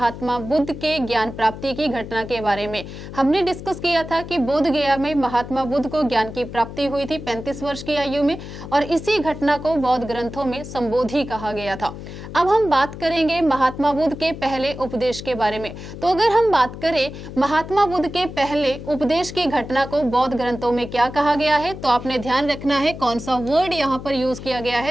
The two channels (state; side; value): noise; left; hum, 11 dB below the sound